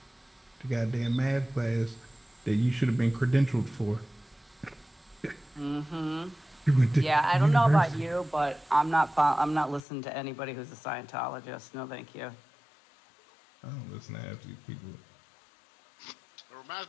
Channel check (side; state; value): right; drops out; at 9.8 s